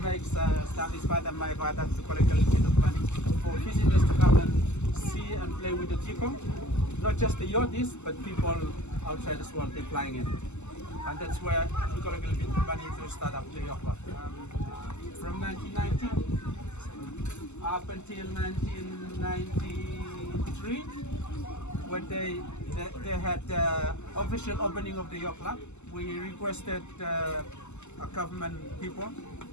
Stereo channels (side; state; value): right; late; 0.83 ms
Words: makes Stanley's father and my father to collect a little bit of money for visitors to come and see and play with the tikong. Not just the yachties, but people outside as well, they're flying in. And that's where we collect a little bit of money to start up the yacht club. From 1990 up until 1993, when they had the official opening of the yacht club, we requested government people,